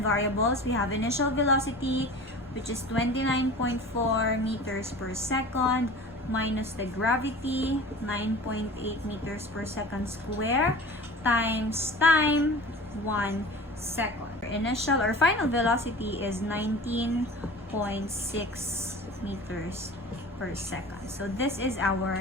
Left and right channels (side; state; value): both; normal; correlation 0.39